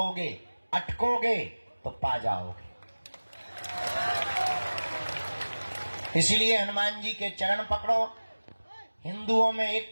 अटकोगे तो पा जाओगे। इसलिए हनुमान जी के चरण पकड़ो, हिंदुओं में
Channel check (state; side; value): inverted; both; correlation -1.00